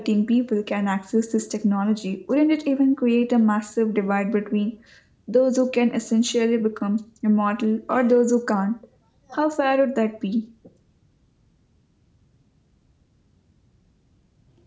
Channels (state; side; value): identical; both; correlation 1.00